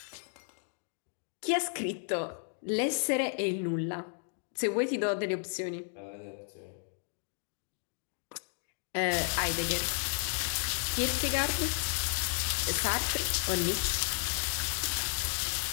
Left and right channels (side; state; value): right; silent; 56 dB below the other